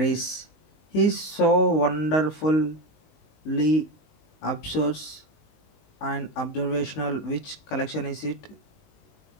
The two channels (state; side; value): late; right; 19 ms